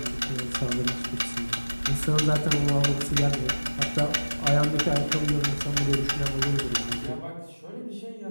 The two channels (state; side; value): inverted; both; correlation -1.00